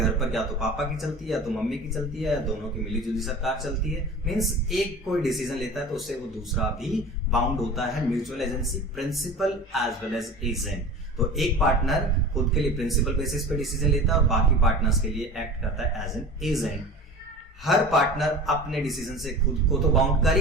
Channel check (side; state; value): both; normal; correlation 0.36